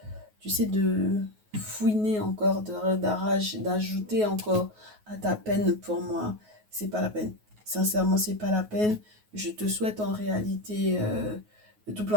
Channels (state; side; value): late; left; 9.4 ms